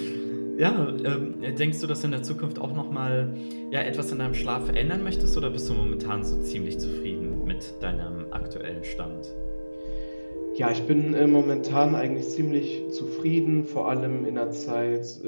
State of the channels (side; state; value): both; inverted; correlation -1.00